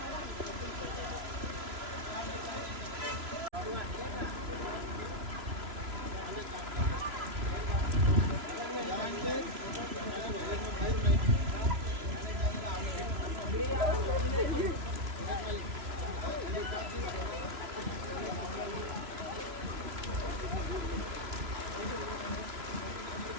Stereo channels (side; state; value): left; late; 3.0 ms